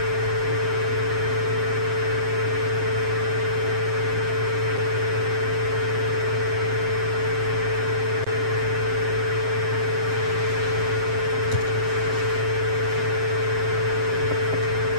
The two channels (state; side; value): late; left; 7.6 ms